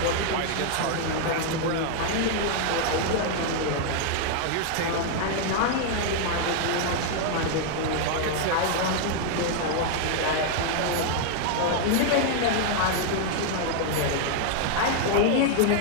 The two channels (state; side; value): different; both; correlation 0.00